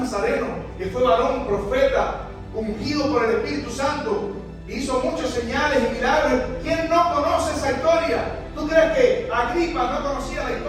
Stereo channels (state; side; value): identical; both; correlation 1.00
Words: que fue varón, profeta, ungido por el Espíritu Santo, hizo muchas señales y milagros. ¿Quién no conoce esa historia? ¿Tú crees que Agripa no conocía la